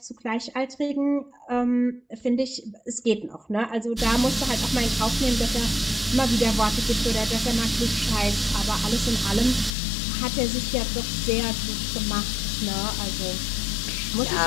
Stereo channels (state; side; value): drops out; right; at 9.7 s